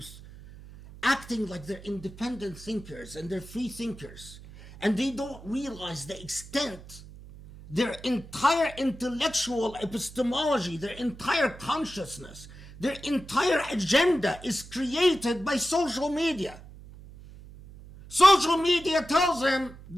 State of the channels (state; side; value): noise; right; hum, 17 dB below the sound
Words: acting like they're independent thinkers and they're free thinkers, and they don't realize the extent their entire intellectual epistemology, their entire consciousness, their entire agenda is created by social media. Social media tells them